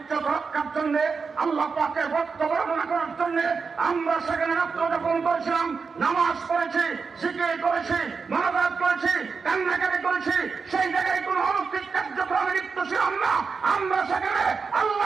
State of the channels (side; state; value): left; quieter; 5.1 dB